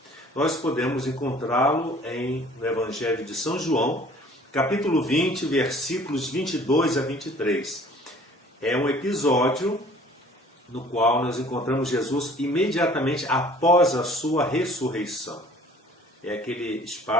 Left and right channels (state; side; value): normal; both; correlation 0.51